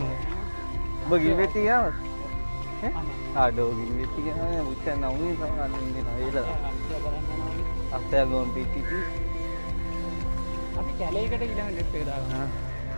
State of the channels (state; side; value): inverted; both; correlation -1.00